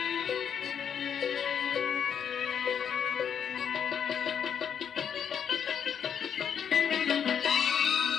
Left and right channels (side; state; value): right; quieter; 8.0 dB